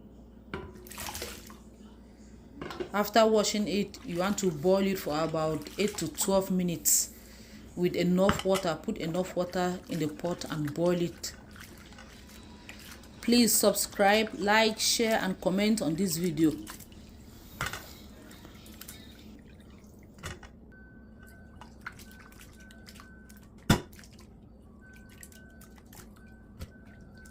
After washing it, you want to boil it for about 8 to 12 minutes with enough water. Put enough water in the pot and boil it. Please subscribe, like, share and comment on this video.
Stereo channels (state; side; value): identical; both; correlation 1.00